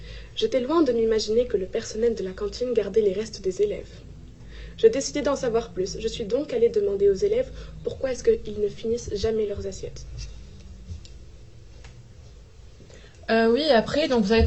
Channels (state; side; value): identical; both; correlation 1.00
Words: J'étais loin de m'imaginer que le personnel de la cantine gardait les restes des élèves. J'ai décidé d'en savoir plus. Je suis donc allée demander aux élèves pourquoi est-ce qu'ils ne finissent jamais leurs assiettes. Oui, après, donc vous avez